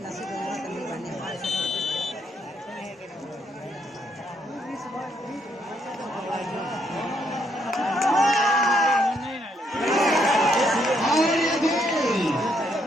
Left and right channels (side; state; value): both; normal; correlation 0.73